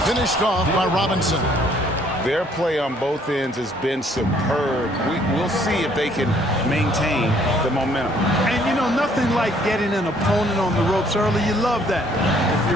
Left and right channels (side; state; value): both; normal; correlation 0.63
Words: finished off by Robinson. Their play on both ends has been superb. We'll see if they can maintain the momentum. And, you know, nothing like getting an opponent on the ropes early. You love that if